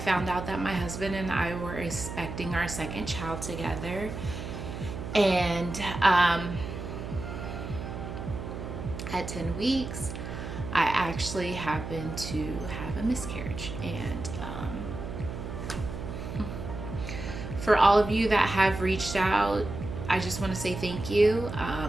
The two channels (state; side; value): noise; right; hum, 8 dB below the sound